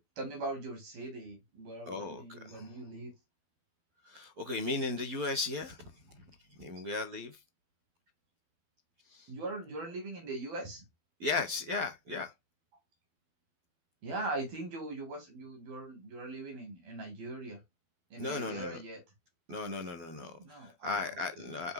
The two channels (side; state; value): left; late; 12 ms